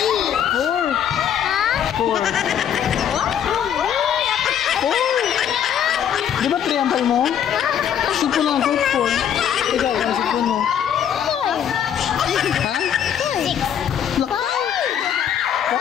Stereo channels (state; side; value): quieter; right; 9.1 dB